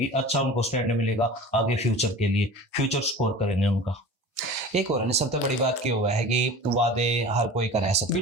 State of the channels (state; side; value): normal; both; correlation 0.38